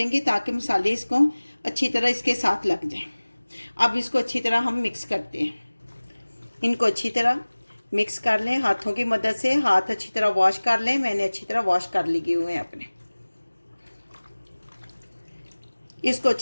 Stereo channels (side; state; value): both; inverted; correlation -1.00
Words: ताकि मसाले इसको अच्छी तरह इसके साथ लग जाए। अब इसको अच्छी तरह हम मिक्स करते हैं। इनको अच्छी तरह मिक्स कर लें हाथों की मदद से। हाथ अच्छी तरह वॉश कर लें। मैंने अच्छी तरह वॉश कर लिए हुए हैं अपने। इसको